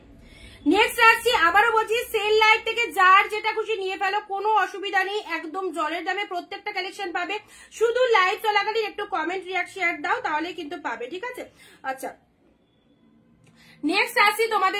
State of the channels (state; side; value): identical; both; correlation 1.00